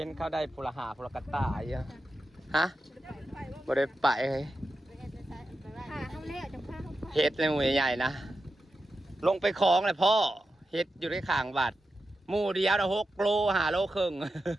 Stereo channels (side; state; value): both; normal; correlation 0.90